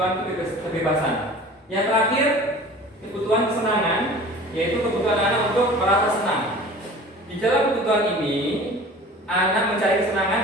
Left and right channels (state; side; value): normal; both; correlation 0.42